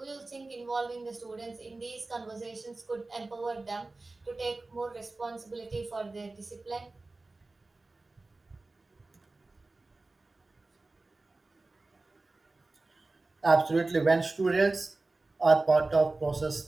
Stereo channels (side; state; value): left; quieter; 3.3 dB